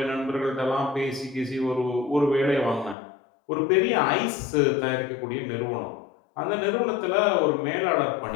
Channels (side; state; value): right; drops out; at 3.0 s